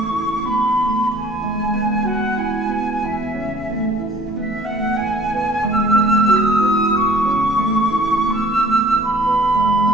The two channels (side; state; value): both; normal; correlation 0.53